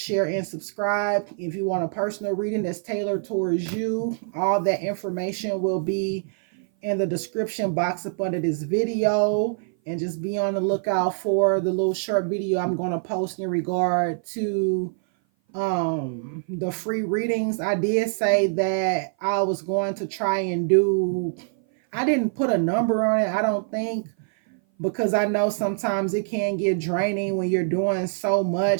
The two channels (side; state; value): left; silent; 57 dB below the other